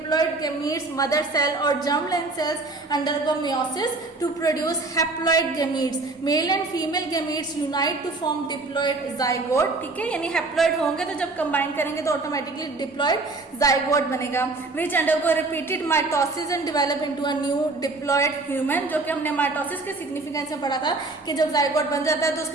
gametes, mother cell or germline cells undergo meiosis to produce haploid gametes. Male and female gametes unite to form diploid zygote. ठीक है, यानी haploid होंगे तो जब combine करेंगे तो automatically diploid zygote बनेगा, which undergo repeated mitosis and develop into a new diploid human. जो कि हमने mitosis के significance में पढ़ा था कि जब zygote बन जाता है तो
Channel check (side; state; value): left; quieter; 3.4 dB